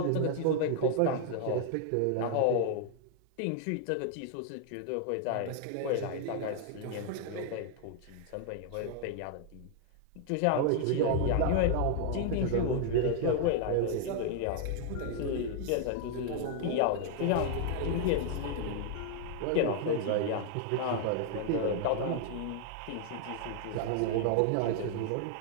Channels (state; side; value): different; both; correlation 0.00